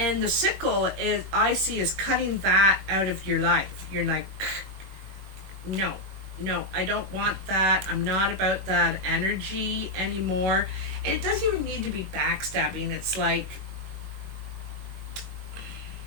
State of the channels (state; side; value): late; left; 21 ms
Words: sickle I see is cutting that out of your life. You're like, no, no, I don't want that. I'm not about that energy anymore. And it doesn't even need to be backstabbing. It's like,